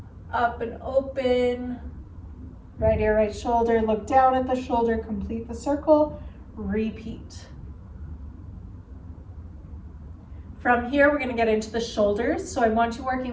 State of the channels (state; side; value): identical; both; correlation 1.00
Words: up and open, right ear, right shoulder, look down at the shoulder, complete the circle, repeat. From here, we're gonna get into the shoulders. So I want you